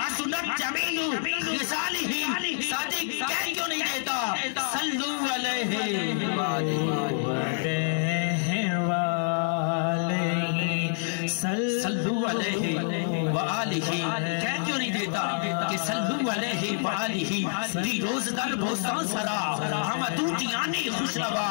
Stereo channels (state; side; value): silent; right; 60 dB below the other